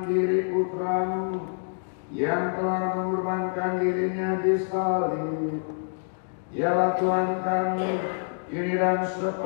diri Putra-Mu yang telah mengorbankan dirinya di salib. Ialah Tuhan kami, kini dan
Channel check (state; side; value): silent; right; digital silence